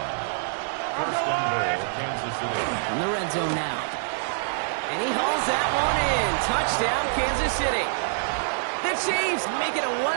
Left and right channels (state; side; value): silent; left; digital silence